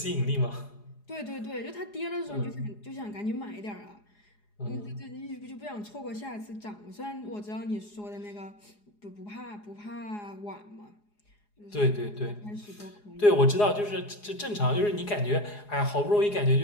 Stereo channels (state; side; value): late; right; 4.8 ms